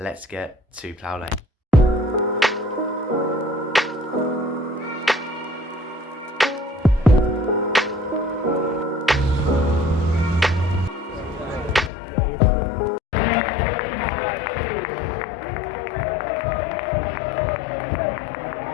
get to Plough Lane.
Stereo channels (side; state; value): right; drops out; at 11.9 s